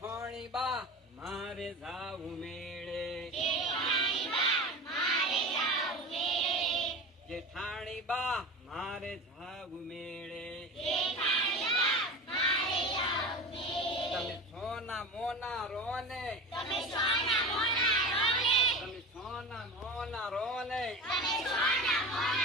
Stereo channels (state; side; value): normal; both; correlation 0.31